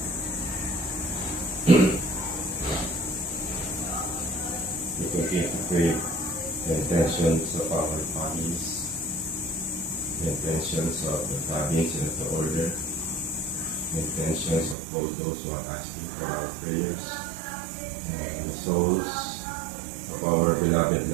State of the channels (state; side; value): drops out; left; at 14.8 s